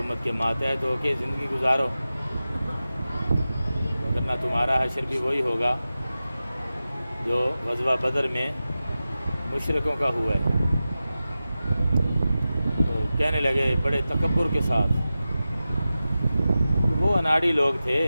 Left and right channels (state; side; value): inverted; both; correlation -0.94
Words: کے ماتحت ہو کے زندگی گزارو، ورنہ تمہارا حشر بھی وہی ہوگا جو غزوہ بدر میں مشرکوں کا ہوا ہے۔ تو کہنے لگے بڑے تکبر کے ساتھ، وہ اناڑی لوگ تھے،